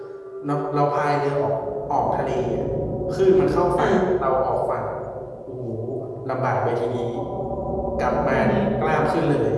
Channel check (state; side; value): identical; both; correlation 1.00